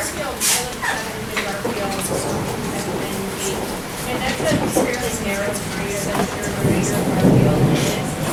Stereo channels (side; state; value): both; identical; correlation 1.00